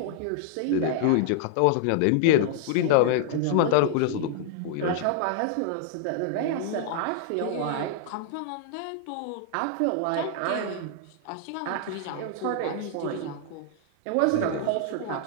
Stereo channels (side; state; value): both; different; correlation -0.01